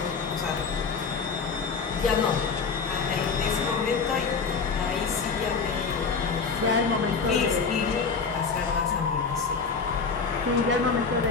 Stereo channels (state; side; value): quieter; right; 5.1 dB